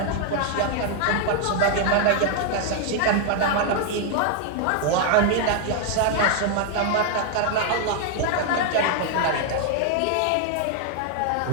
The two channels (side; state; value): both; different; correlation 0.00